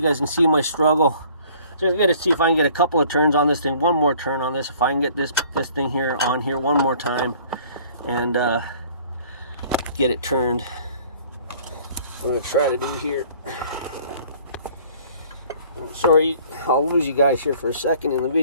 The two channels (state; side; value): inverted; both; correlation -0.54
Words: guys can see my struggle. So I'm gonna see if I can get a couple of turns on this thing. One more turn on this. If I can get this thing here on here one more time and get it turned. I'm gonna try to do here. I'm sorry, I'll lose you guys here for a second in the